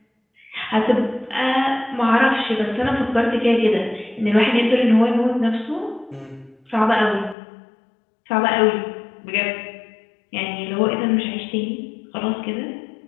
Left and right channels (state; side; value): drops out; right; at 7.4 s